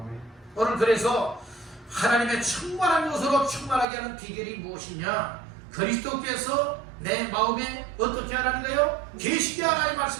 오늘 그래서 하나님의 충만한 것으로 충만하게 하는 비결이 무엇이냐? 그리스도께서 내 마음에 어떻게 하라는 거예요? 계시게 하라는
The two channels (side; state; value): left; drops out; at 3.9 s